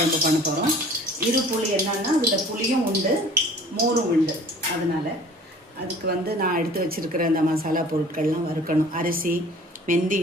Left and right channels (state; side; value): normal; both; correlation 0.48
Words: பண்ண போகிறோம். இரு புளி என்னன்னா அதில் புளியும் உண்டு மோரும் உண்டு. அதனால் அதுக்கு நான் எடுத்து வச்சுருக்கிற இந்த மசாலா பொருட்கள்லாம் வறுக்கணும். அரிசி,